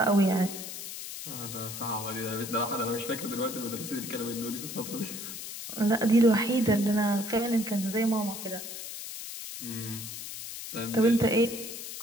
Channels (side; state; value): left; noise; hiss, 9 dB below the sound